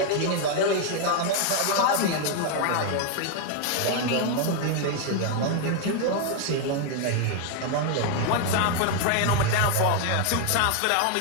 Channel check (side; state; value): both; different; correlation 0.00